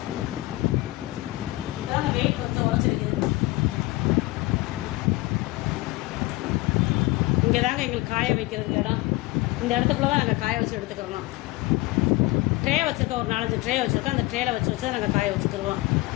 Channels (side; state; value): right; quieter; 20.7 dB